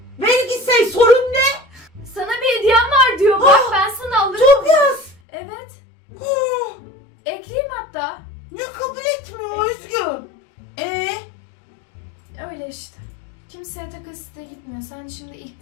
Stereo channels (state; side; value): drops out; right; at 5.2 s